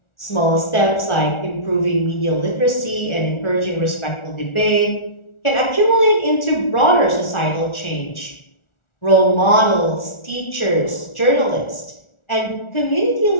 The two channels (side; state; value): right; late; 1.4 ms